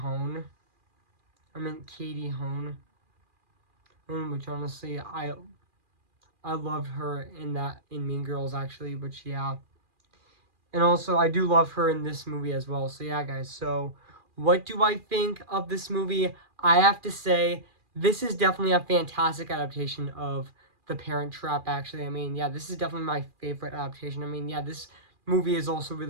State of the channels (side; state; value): left; late; 2.4 ms